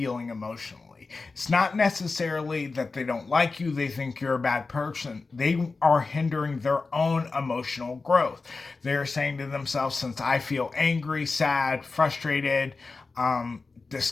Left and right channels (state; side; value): quieter; right; 4.0 dB